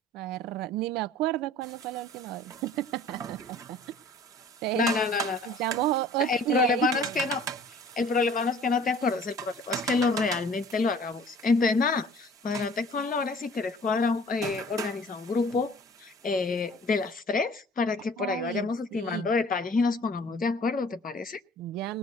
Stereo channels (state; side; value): normal; both; correlation 0.50